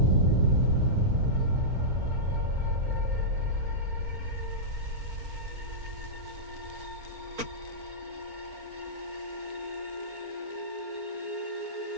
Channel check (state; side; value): late; left; 4.4 ms